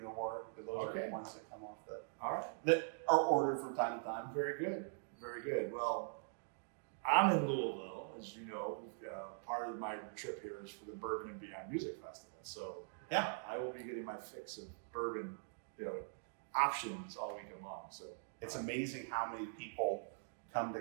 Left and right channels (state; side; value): silent; left; digital silence